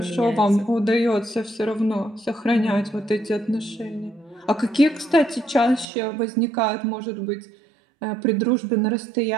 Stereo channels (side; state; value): left; drops out; at 5.9 s